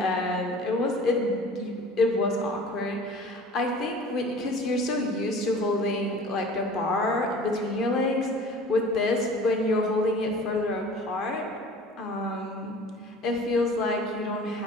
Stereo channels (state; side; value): normal; both; correlation 0.43